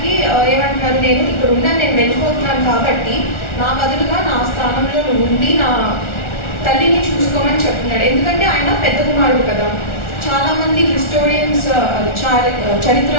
ఏమంటున్నారు, నేను ఇక్కడ ఉన్నాను, నేను వెళ్ళిపోతున్నాను కాబట్టి నా బదులుగా నా స్థానంలో ఉండి నా తల్లిని చూసుకోమని చెప్తున్నాడు. ఎందుకంటే ఆయన పెద్ద కుమారుడు కదా. చాలామంది హిస్టోరియన్స్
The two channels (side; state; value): right; late; 1.4 ms